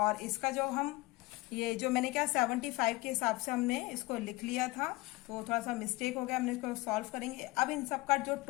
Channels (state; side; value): quieter; right; 21.3 dB